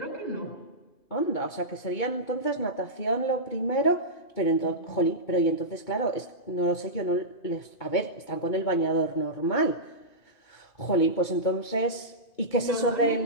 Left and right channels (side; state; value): right; late; 2.2 ms